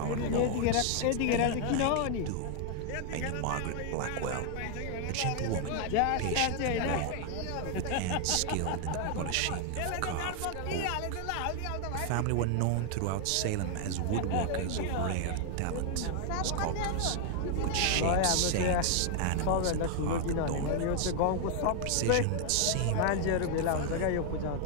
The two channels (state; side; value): different; both; correlation 0.00